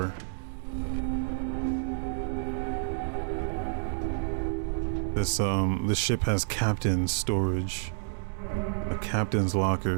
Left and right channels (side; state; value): left; silent; digital silence